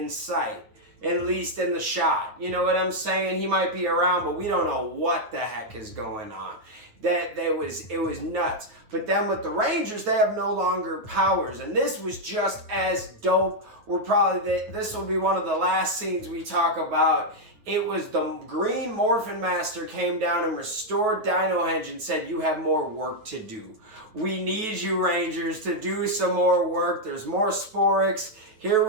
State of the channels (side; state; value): left; late; 9.3 ms